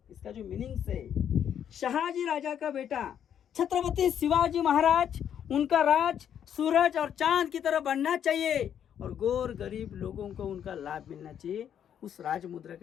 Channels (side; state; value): right; quieter; 9.2 dB